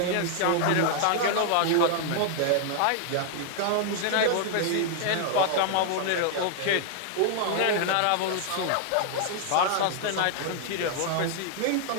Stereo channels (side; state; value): both; different; correlation 0.00